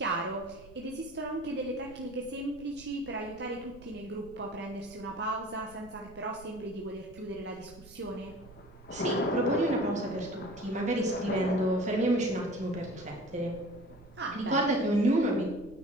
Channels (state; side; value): noise; right; rumble, 21 dB below the sound